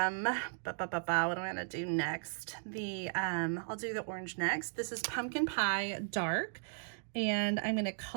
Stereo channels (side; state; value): left; silent; digital silence